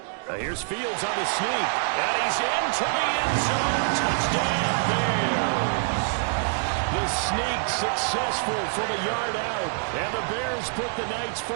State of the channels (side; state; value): left; silent; digital silence